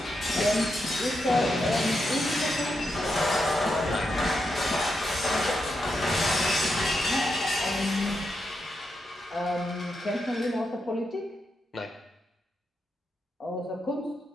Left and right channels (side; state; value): both; normal; correlation 0.85